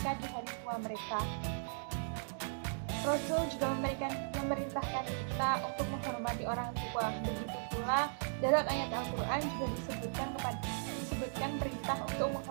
di hari tua mereka. Rasul juga memerintahkan kita untuk menghormati orang tua. Begitu pula dalam ayat Al-Quran juga disebutkan perintah untuk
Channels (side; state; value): left; silent; digital silence